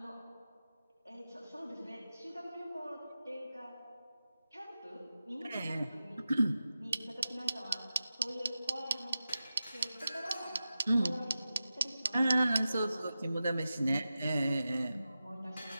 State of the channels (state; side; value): inverted; both; correlation -0.93